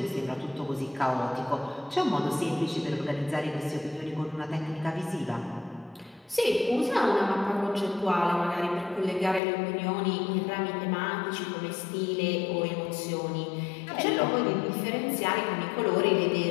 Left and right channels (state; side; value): drops out; right; at 9.4 s